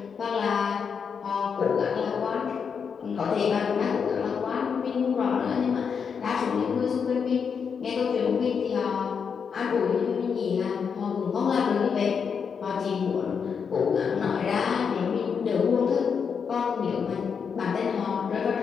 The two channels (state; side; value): quieter; right; 6.4 dB